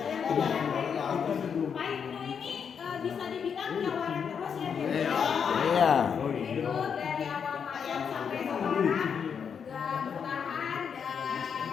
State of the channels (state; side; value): quieter; right; 7.0 dB